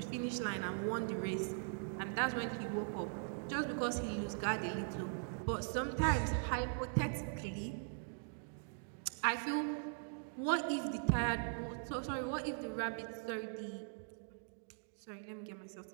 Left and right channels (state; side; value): silent; left; digital silence